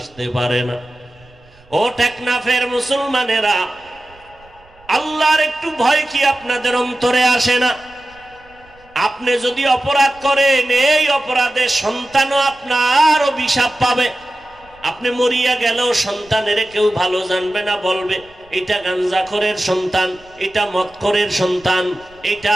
পারে না। ও টেকনাফের মুসলমানেরা, আল্লাহর একটু ভয় কি আপনাদের অন্তরে আসে না? আপনি যদি অপরাধ করেন, এই অপরাধে সন্তানও আপনার অভিশাপ পাবে। আপনি মরিয়া গেলেও সন্তানের কেউ ভালো জানবে না, বলবে এটা গাঞ্জাখোরের সন্তান, এটা মদখোরের সন্তান, এটা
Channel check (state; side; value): noise; right; rumble, 28 dB below the sound